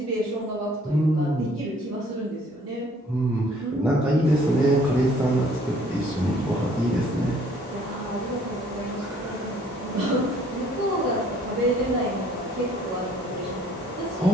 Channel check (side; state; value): both; normal; correlation 0.58